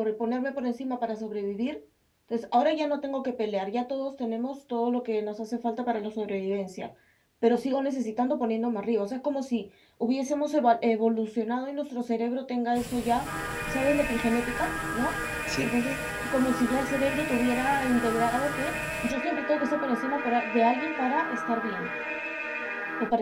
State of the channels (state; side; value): identical; both; correlation 1.00